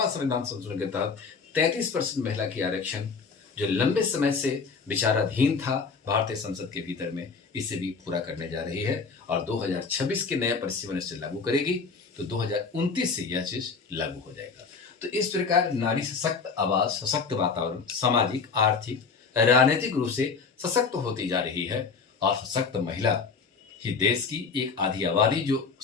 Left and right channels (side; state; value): right; quieter; 5.1 dB